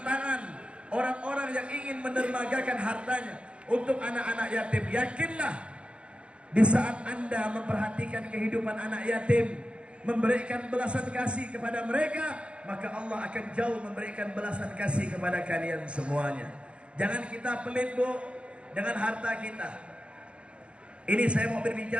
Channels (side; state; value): left; late; 0.058 ms